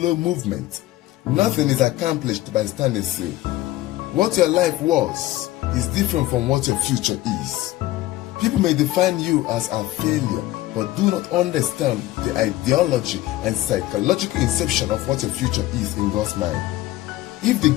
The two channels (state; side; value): quieter; right; 16.4 dB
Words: movement. Nothing is accomplished by standing still. What your life was is different from what your future is. People may define you as a failure, but do not understand the ideology and psychological inception of what your future is in God's mind. If the